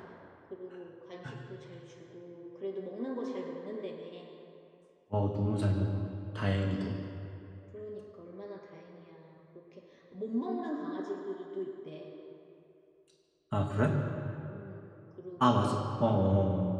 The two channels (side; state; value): both; identical; correlation 1.00